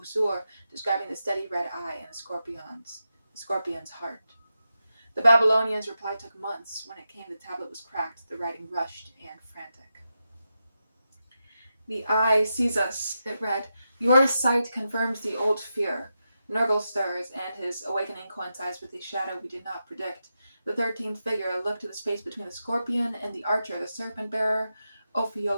describing the steady red eye and the scorpion's heart. The Babylonians' reply took months. When it came, the tablet was cracked, the writing rushed and frantic. The eye sees us, it read. Your sight confirms the old fear. Nurgle stirs, and his awakening coincides with a shadow we did not predict. The 13th figure looked to the space between the scorpion and the archer, the serpent-bearer,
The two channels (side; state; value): both; inverted; correlation -0.88